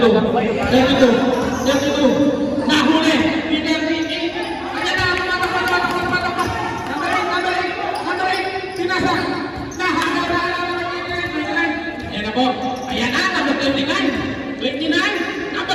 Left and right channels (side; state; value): both; identical; correlation 1.00